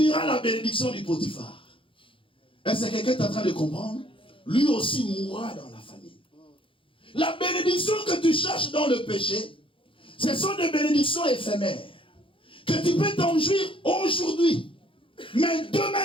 la bénédiction du Potiphar. Est-ce que quelqu'un est en train de comprendre? Lui aussi mourra dans la famine. La bénédiction que tu cherches dans le péché, ce sont des bénédictions éphémères. Que tu peux t'en jouir aujourd'hui. Mais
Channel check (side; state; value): right; late; 0.25 ms